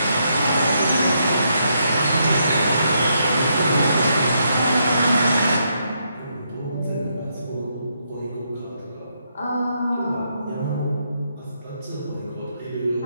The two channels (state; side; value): inverted; both; correlation -0.77